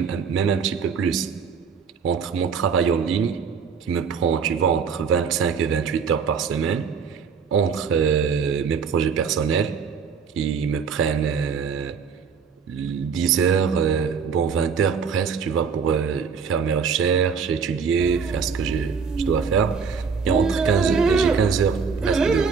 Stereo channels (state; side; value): quieter; left; 6.0 dB